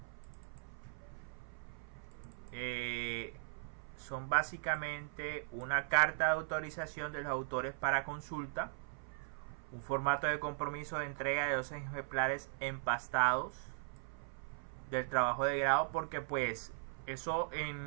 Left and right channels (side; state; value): left; silent; 52 dB below the other